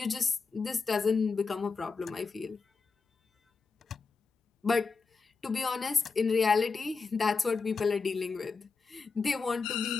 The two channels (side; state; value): right; quieter; 4.7 dB